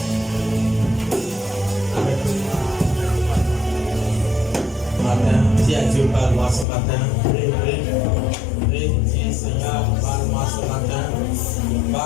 Dis à Dieu, parle-moi ce matin. Prie, dis Seigneur, parle-moi ce matin.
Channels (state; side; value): drops out; right; at 6.7 s